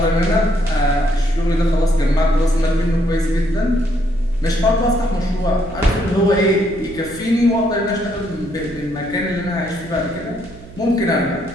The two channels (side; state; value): right; noise; hum, 18 dB below the sound